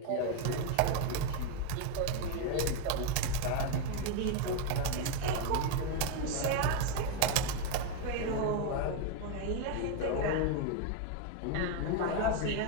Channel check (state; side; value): different; both; correlation 0.02